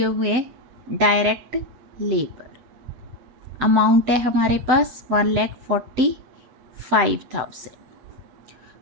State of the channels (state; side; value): late; left; 7.8 ms